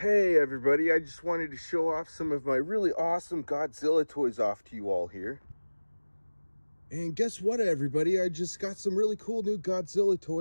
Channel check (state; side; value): inverted; both; correlation -1.00